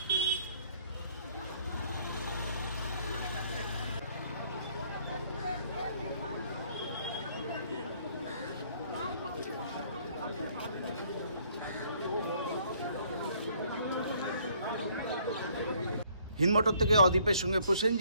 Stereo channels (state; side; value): inverted; both; correlation -0.63